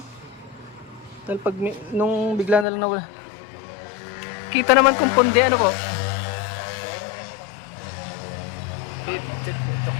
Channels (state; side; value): drops out; right; at 2.7 s